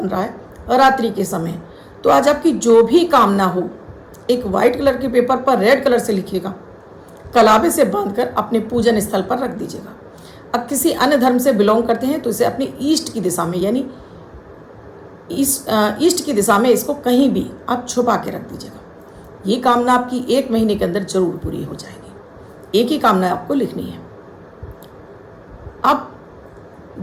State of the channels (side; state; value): both; identical; correlation 1.00